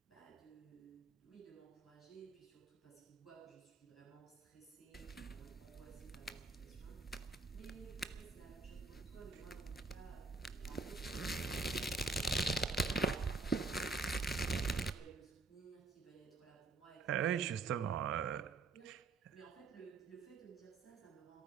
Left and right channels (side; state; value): left; quieter; 4.0 dB